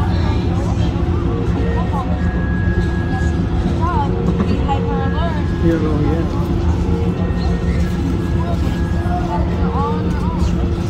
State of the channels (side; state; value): both; identical; correlation 1.00